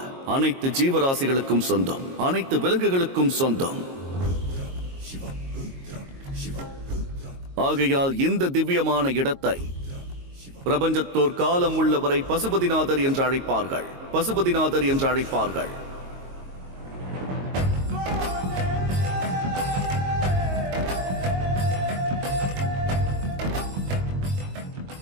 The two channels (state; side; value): late; left; 22 ms